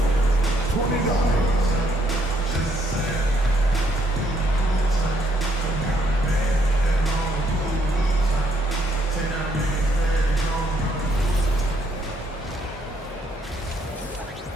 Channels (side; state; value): both; normal; correlation 0.71